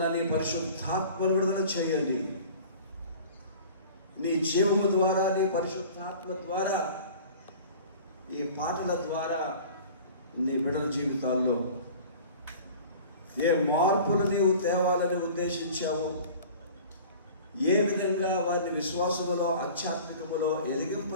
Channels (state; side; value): inverted; both; correlation -0.43